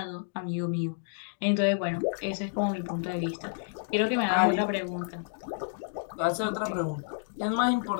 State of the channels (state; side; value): silent; right; digital silence